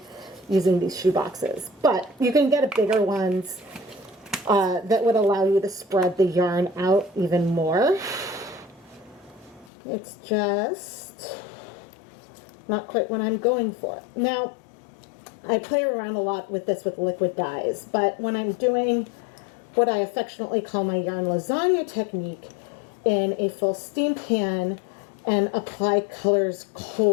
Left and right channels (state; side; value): drops out; right; at 9.7 s